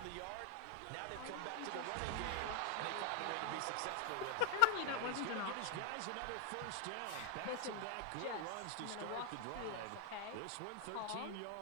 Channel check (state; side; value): different; both; correlation 0.00